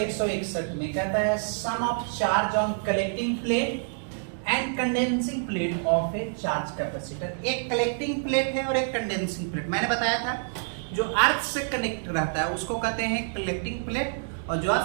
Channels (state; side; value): silent; left; digital silence